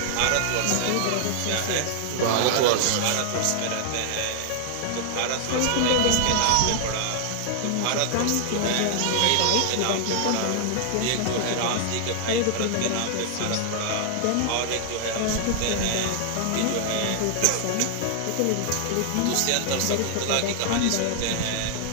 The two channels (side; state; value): both; different; correlation 0.00